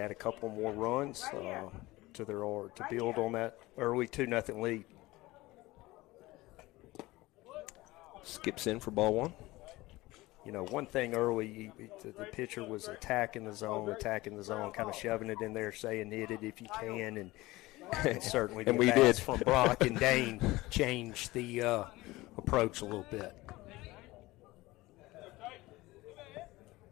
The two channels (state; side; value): quieter; right; 19.6 dB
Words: a couple more runs to build on that early 2-0 lead. Skips in for ball 1. One thing early, the pitcher was attacking the zone, kind of shoving it in there, saying hit it if you can, and certainly and the we bats did. from Brock and Dane changed the approach a little bit.